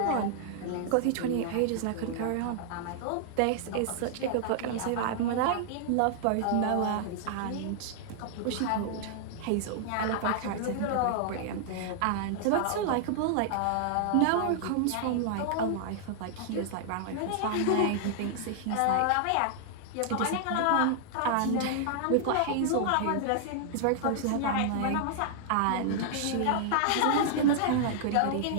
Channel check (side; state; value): both; different; correlation -0.01